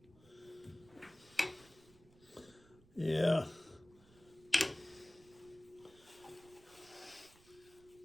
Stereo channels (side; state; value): right; noise; rumble, 25 dB below the sound